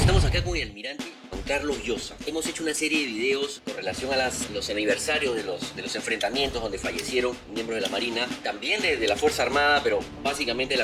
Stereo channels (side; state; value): both; identical; correlation 1.00